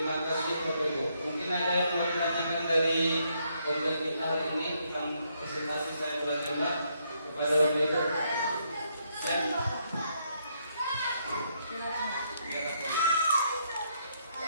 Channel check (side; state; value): both; inverted; correlation -0.75